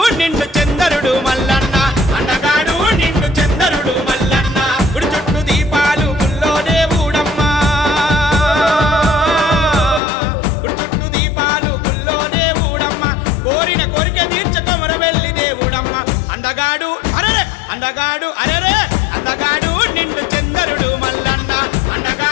నిండు చందరుడు మల్లన్న, అందగాడు నిండు చందరుడు మల్లన్న, గుడి చుట్టూ దీపాలు గుల్లో దేవుడమ్మా, గుడి చుట్టూ దీపాలు గుల్లో దేవుడమ్మ, కోరిన కోరిక తీర్చ కొమరవెల్లి దేవుడమ్మ. అందగాడు అరెరే, అందగాడు అరెరే, అందగాడు నిండు చందరుడు మల్లన్న,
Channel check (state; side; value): drops out; right; at 10.0 s